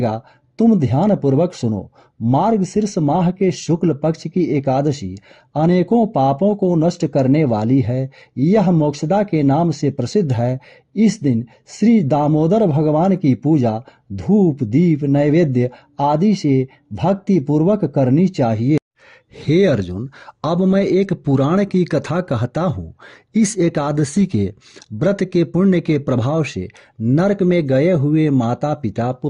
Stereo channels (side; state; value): both; identical; correlation 1.00